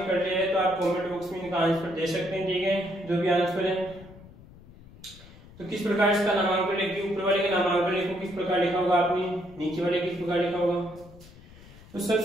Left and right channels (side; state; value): left; noise; rumble, 21 dB below the sound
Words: कर लिया है तो आप कमेंट बॉक्स में इनका आंसर दे सकते हैं, ठीक है, जो भी आंसर है। तो किस प्रकार इसका नामांकन लिखिए, ऊपर वाले का नामांकन लिखो, किस प्रकार लिखा होगा आपने, नीचे वाले किस प्रकार लिखा होगा। तो